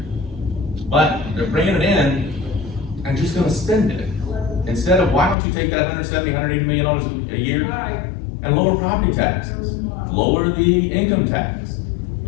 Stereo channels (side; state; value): right; drops out; at 5.4 s